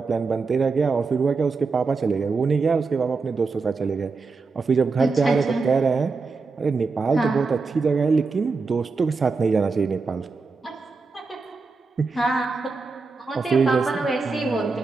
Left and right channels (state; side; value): quieter; left; 4.4 dB